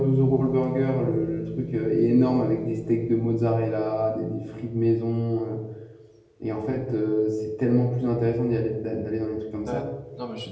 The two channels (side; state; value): both; identical; correlation 1.00